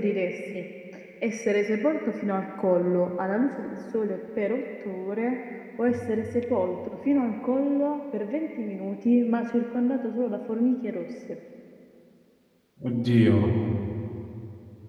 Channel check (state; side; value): identical; both; correlation 1.00